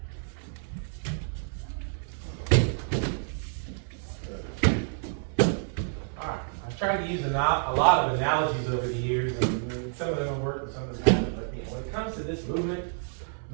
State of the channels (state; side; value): silent; left; 58 dB below the other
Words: Tried to use a lot of analogies over the years, and some of them have worked and some of them haven't. But when it comes to this movement,